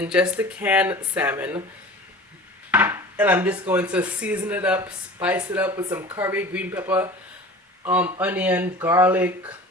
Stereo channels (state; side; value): normal; both; correlation 0.39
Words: just the canned salmon. And I'm just going to season it up, spice it up with some curry, green pepper, onion, garlic,